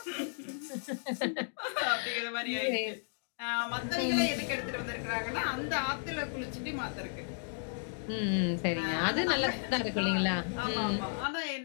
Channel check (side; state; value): right; silent; digital silence